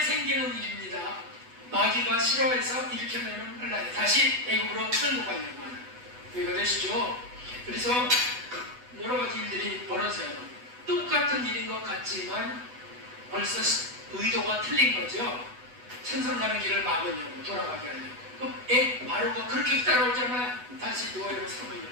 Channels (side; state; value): left; late; 8.1 ms